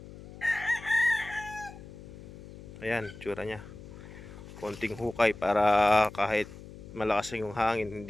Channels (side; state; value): left; noise; hum, 16 dB below the sound